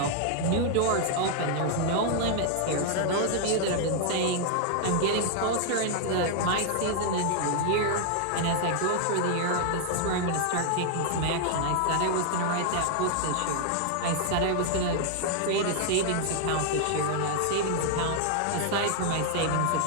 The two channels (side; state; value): both; different; correlation 0.00